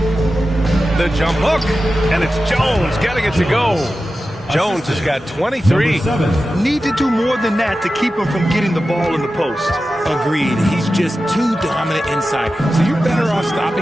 The jump hook. And it's Jones getting it to go. Jones has got 23. Need to do more than that to keep him from getting the ball in the post. Agreed. He's just too dominant inside. So you're better off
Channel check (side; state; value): both; normal; correlation 0.93